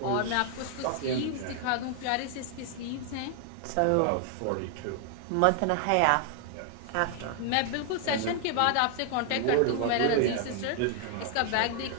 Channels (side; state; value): both; different; correlation 0.00